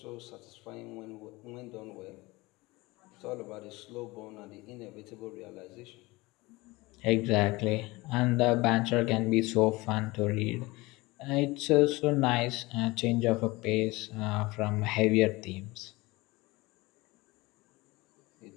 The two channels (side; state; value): right; quieter; 22.1 dB